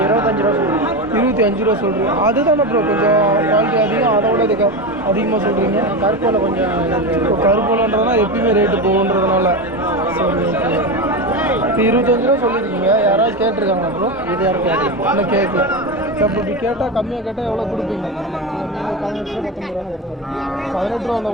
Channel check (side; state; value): both; normal; correlation 0.18